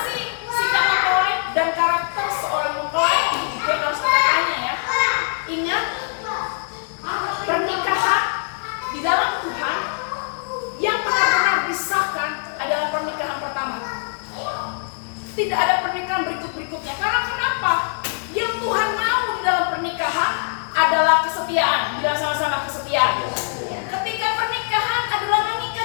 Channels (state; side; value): silent; right; digital silence